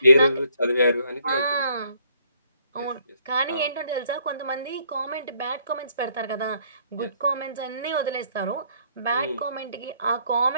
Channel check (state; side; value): inverted; both; correlation -0.66